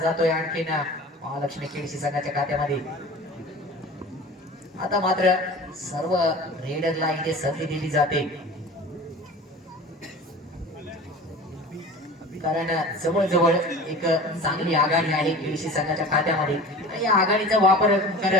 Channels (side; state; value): both; normal; correlation 0.38